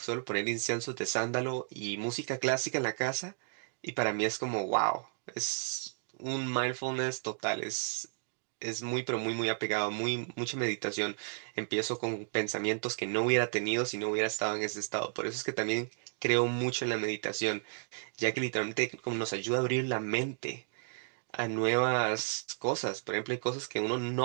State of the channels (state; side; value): silent; left; digital silence